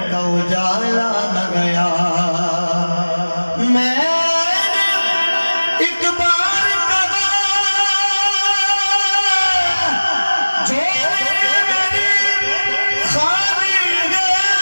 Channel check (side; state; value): both; inverted; correlation -1.00